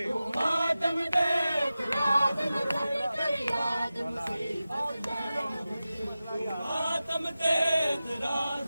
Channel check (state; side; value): inverted; both; correlation -0.94